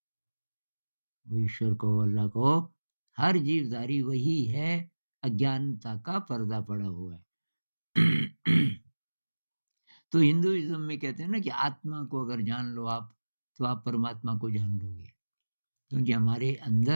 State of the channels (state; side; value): inverted; both; correlation -1.00